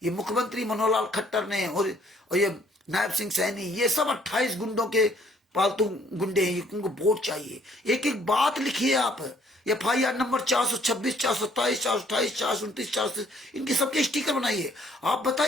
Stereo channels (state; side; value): normal; both; correlation 0.63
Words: ये मुख्यमंत्री मनोहर लाल खट्टर ने और ये नायब सिंह सैनी, ये सब 28 गुंडों के पालतू गुंडे हैं, इनको वोट चाहिए। एक एक बात लिखिए आप, FIR नंबर 426, 427, 428, 429, 430, इनके सबके स्टिकर बनाइए। आप